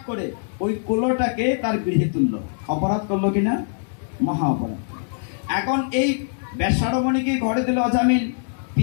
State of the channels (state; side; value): silent; right; digital silence